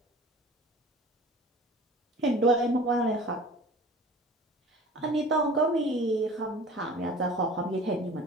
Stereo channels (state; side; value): normal; both; correlation 0.43